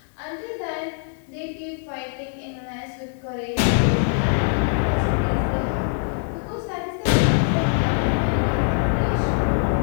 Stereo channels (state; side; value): silent; right; 58 dB below the other